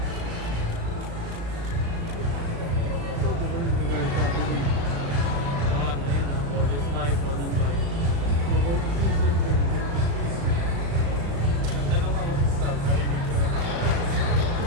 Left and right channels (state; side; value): late; left; 35 ms